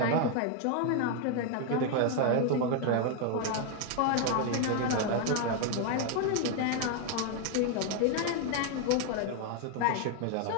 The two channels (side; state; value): both; different; correlation 0.01